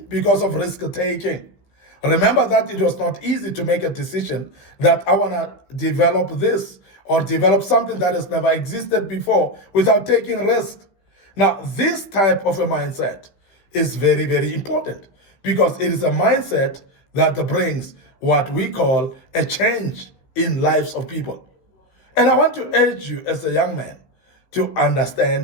because of risk taking. Remember that it was not easy to make a decision that I want to develop this or develop something that has never existed before without taking risks. Now, this type of a mindset is very, very important because it is a mindset that brings what we call a change in lives of people. And I want to urge you as a young man to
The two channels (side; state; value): right; late; 15 ms